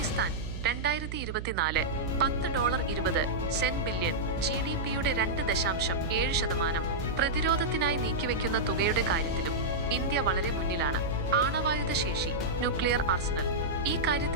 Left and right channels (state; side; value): noise; right; hum, 7 dB below the sound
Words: 2024 $10.20 ബില്യൺ, GDP-യുടെ 2.7%. പ്രതിരോധത്തിനായി നീക്കിവെക്കുന്ന തുകയുടെ കാര്യത്തിലും ഇന്ത്യ വളരെ മുന്നിലാണ്. ആണവായുധ ശേഷി, ന്യൂക്ലിയർ ആർസണൽ. ഈ